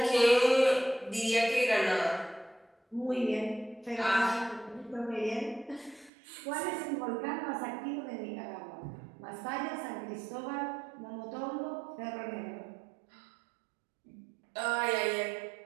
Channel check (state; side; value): drops out; left; at 6.1 s